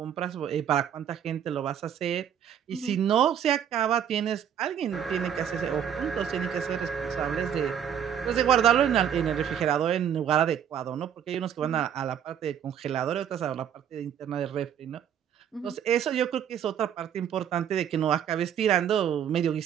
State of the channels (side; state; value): left; quieter; 9.1 dB